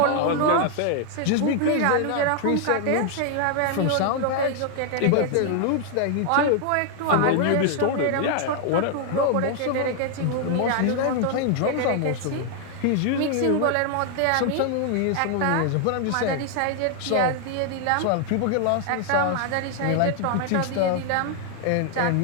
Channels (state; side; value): different; both; correlation 0.00